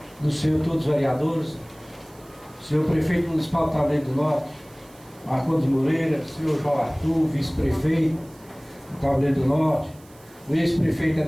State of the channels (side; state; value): right; noise; hiss, 27 dB below the sound